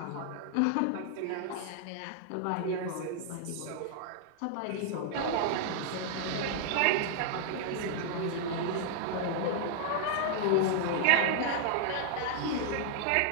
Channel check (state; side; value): different; both; correlation 0.00